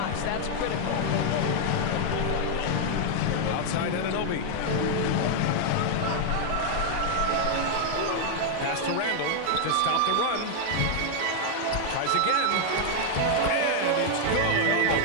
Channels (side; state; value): both; different; correlation 0.00